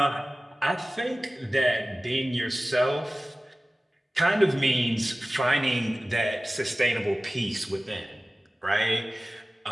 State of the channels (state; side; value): normal; both; correlation 0.97